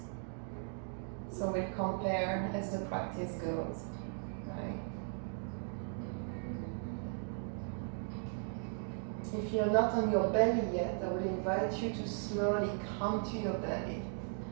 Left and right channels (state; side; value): silent; left; 53 dB below the other